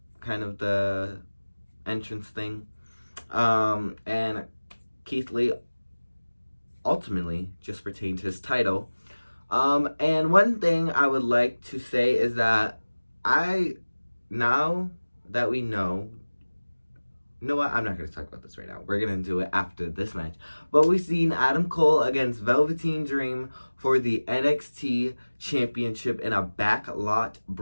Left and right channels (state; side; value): inverted; both; correlation -1.00